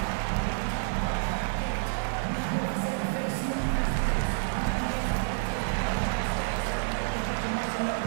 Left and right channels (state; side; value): silent; left; 59 dB below the other